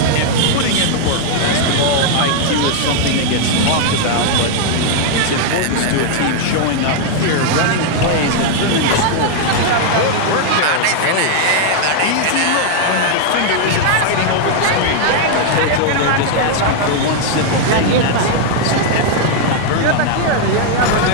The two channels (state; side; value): different; both; correlation 0.00